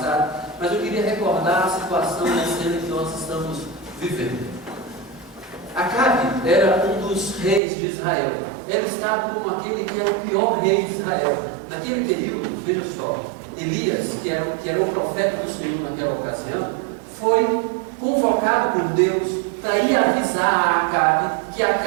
Mas eu queria recordar a situação da cena que nós estamos vivendo. Acabe era um dos reis de Israel. Ele estava como aquele que era o pior rei de Israel. Naquele período, veja só, Elias, que era o profeta do Senhor naquela ocasião, foi convocado por Deus para ir avisar a Acabe que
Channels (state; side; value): drops out; left; at 7.6 s